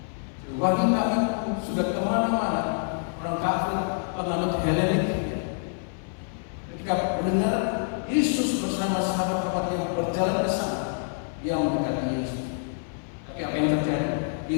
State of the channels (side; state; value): right; silent; 60 dB below the other